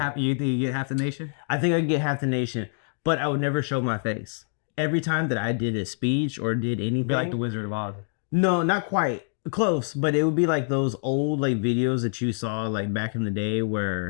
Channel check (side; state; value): right; silent; digital silence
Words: you get half the nation? I think I could get half the nation, but I would never show my face. Every time that I did a speech or did anything, be like the Wizard of Oz. No, not quite close, but it would be like those old videos that you saw back in the day